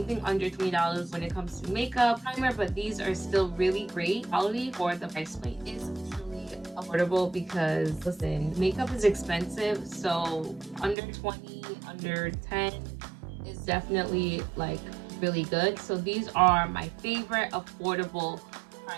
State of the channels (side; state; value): left; drops out; at 11.0 s